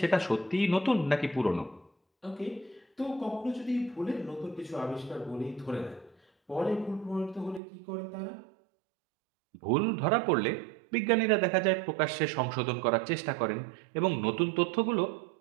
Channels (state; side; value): drops out; left; at 7.6 s